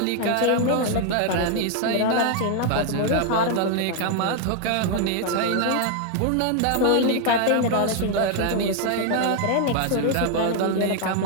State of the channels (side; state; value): both; different; correlation 0.00